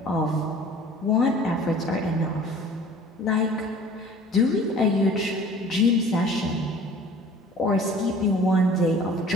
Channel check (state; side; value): normal; both; correlation 0.48